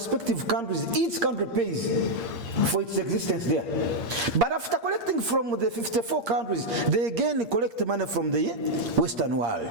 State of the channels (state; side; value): late; left; 8.6 ms